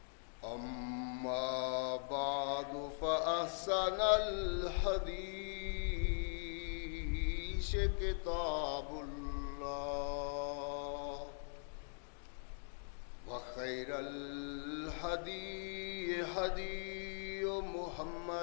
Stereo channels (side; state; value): right; silent; digital silence